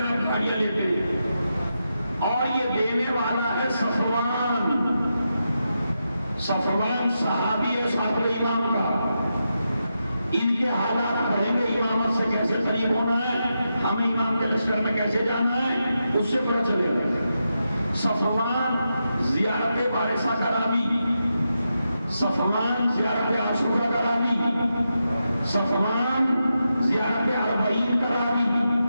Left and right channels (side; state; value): both; inverted; correlation -0.87